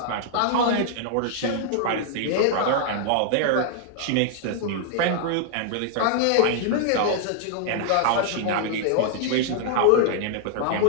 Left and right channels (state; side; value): different; both; correlation -0.01